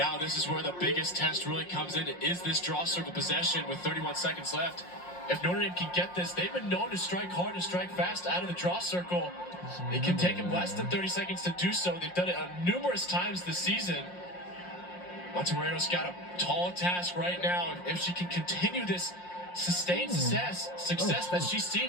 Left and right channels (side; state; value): right; late; 5.6 ms